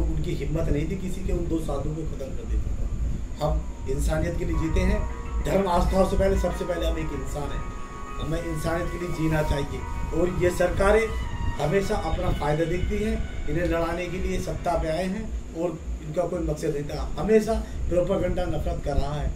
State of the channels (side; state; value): both; identical; correlation 1.00